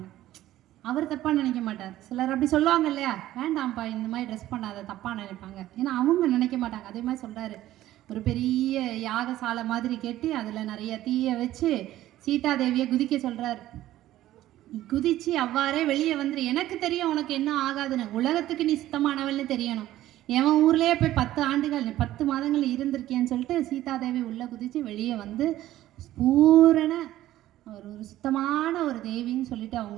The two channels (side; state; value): left; quieter; 14.3 dB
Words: அவர் தப்பாக நினைக்க மாட்டார். சிலர் அப்படி சொல்லுவாங்க இல்லையா, வேண்டாம்ப்பா இந்த மாதிரி ட்ரெஸ் பண்ணாத தப்பாக நினைப்பாங்க, ஏன்னா அவங்க நினைக்க மாட்டாங்க. அதே மாதிரி சொல்கிறாரு, ஒரு பெரிய யாகசாலை மாதிரி கட்டி அதில் நிறைய தீயை வச்சு சீதாதேவியை குதிக்க சொல்கிறார். குதிச்சு அவ்வாறே வெளியே வந்துரு, எனக்கு தெரியும் உனக்கு என்ன ஆகாதுன்னு, உலகத்துக்கு நீ சுத்தமானவள்னு தெரியணும். எவன் ஊர்லேயே போய் 10 ஆண்டுகள் 10 மாதங்கள் இருந்திருக்கேன்னு சொல்லிட்டு சீதாதேவி உள்ளே குதித்து வெளியே வந்து பூரண ஒரு சுத்தமான ஒரு தேவின்னு சொல்லிட்டு